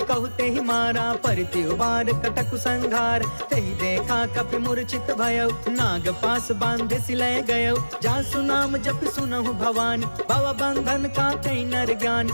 कहु तेहि मारा, परिति उबार कटकु संघार। तेहि देखा कपि मूर्छित भयउ, नाग पास बांधे सिलय गयउ। जासु नाम जप सुनहु भवानी, भव बंधन काटई नर ज्ञानी।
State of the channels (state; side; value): inverted; both; correlation -1.00